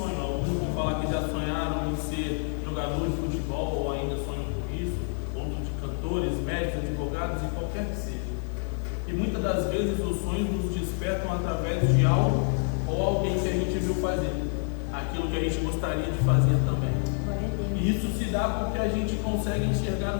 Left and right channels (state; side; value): silent; right; 59 dB below the other